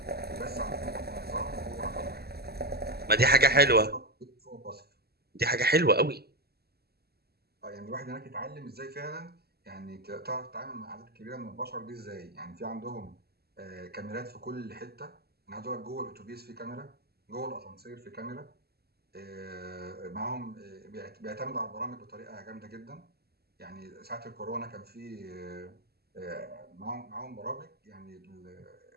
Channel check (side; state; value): left; late; 0.46 ms